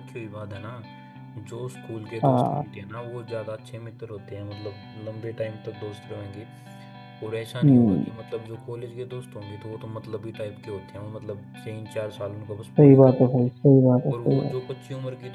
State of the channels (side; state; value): both; identical; correlation 1.00